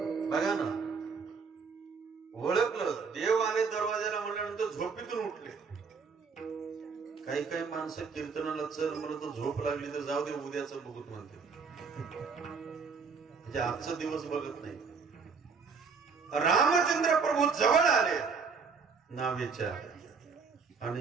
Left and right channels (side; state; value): left; quieter; 5.3 dB